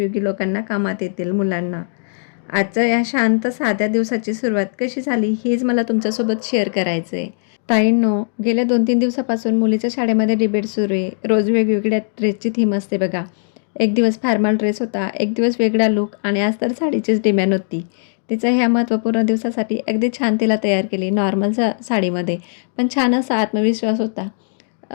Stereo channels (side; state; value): right; silent; digital silence